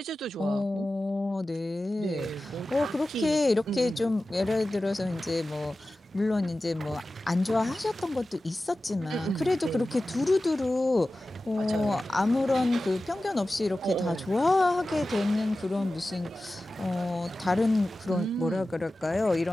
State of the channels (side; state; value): both; normal; correlation 0.95